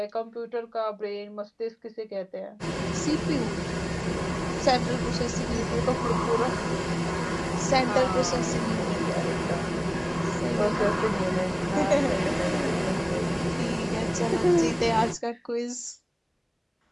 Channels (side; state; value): both; identical; correlation 1.00